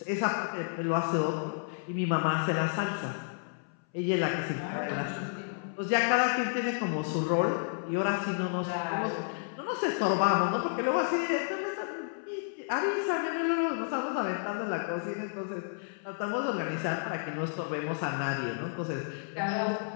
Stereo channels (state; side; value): silent; right; 57 dB below the other